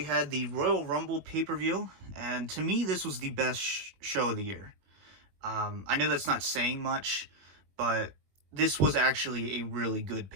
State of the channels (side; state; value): left; late; 21 ms